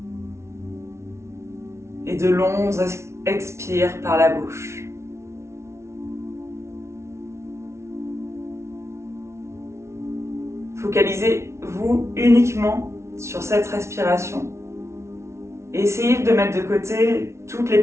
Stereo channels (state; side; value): late; left; 0.13 ms